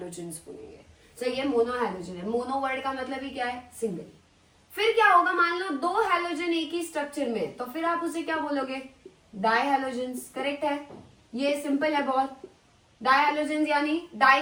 बोलेंगे। तो ये मोनोहैलोजन है। मोनो वर्ड का मतलब ही क्या है? सिंगल। फिर क्या होगा, मान लो 2 हैलोजन एक ही स्ट्रक्चर में, तो फिर आप उसे क्या बोलोगे? डायहैलोजन्स। करेक्ट है, ये सिंपल है बहुत। डायहैलोजन्स यानी डाई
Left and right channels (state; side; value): identical; both; correlation 1.00